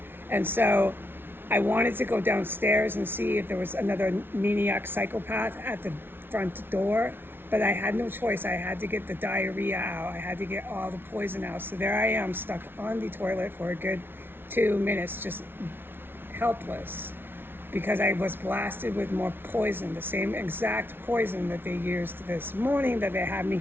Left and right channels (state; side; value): late; left; 0.11 ms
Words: And so I wanted to go downstairs and see if there was another maniac psychopath at the front door, but I had no choice. I had to get the diarrhea out. I had to get all the poison out. So there I am, stuck on the toilet for a good 2 minutes, just helpless, because I was blasted with more poison, the same exact poison that they used this morning, that they had me